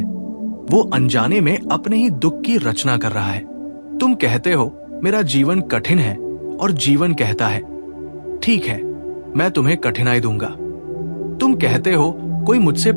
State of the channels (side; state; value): both; inverted; correlation -1.00